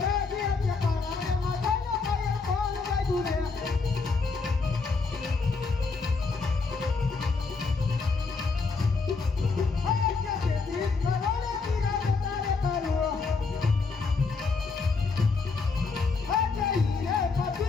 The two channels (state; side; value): quieter; right; 4.4 dB